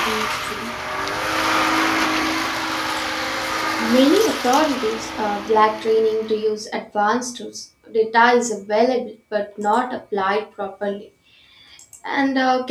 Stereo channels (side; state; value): both; identical; correlation 1.00